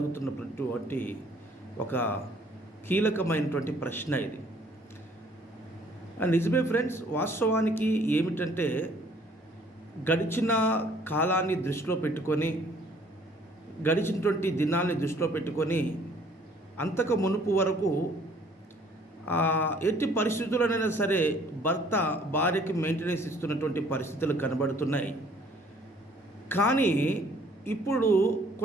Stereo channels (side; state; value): both; normal; correlation 0.59